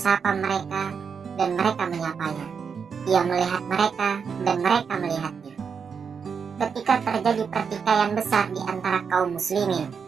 mereka dan mereka menyapanya. Ia melihat mereka dan mereka melihatnya. ketika terjadi pertikaian besar di antara kaum muslimin,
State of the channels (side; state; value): left; quieter; 6.3 dB